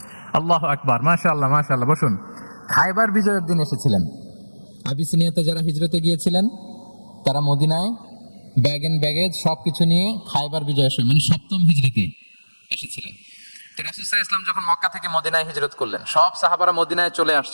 আল্লাহু আকবার, মাশাআল্লাহ মাশাআল্লাহ। বসুন। খায়বার বিজয়ের দিন এসেছিলেন। আবিসিনিয়াতে যারা হিজরতে গিয়েছিলেন তারা মদিনায় ব্যাগ এন্ড ব্যাগেজ সবকিছু নিয়ে খায়বার বিজয়ের সময়, মানে 7ম হিজরিতে এসেছিলেন। তো রাসূল সাল্লাল্লাহু আলাইহি ওয়াসাল্লাম যখন মক্কা থেকে মদিনায় হিজরত করলেন, সব সাহাবারা মদিনায় চলে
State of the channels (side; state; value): both; inverted; correlation -1.00